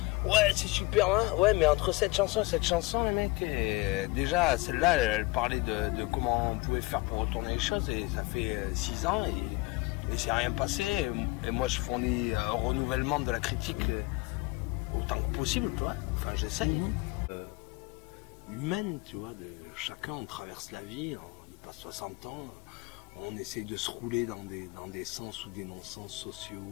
Ouais, c'est super, hein. Ouais, mais entre cette chanson et cette chanson, les mecs, déjà, celle-là, elle parlait de comment on pouvait faire pour retourner les choses et ça fait 6 ans et c'est rien passé. Et moi, je fournis un renouvellement de la critique autant que possible, toi. Enfin, j'essaye. Humaine, tu vois, chacun, on traverse la vie, on y passe 60 ans, on essaye de se rouler dans des sens ou des non-sens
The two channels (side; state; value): right; quieter; 22.9 dB